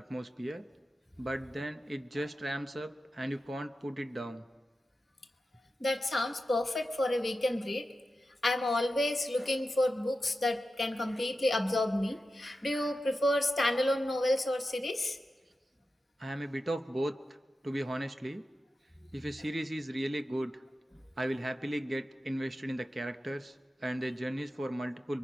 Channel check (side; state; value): both; normal; correlation 0.92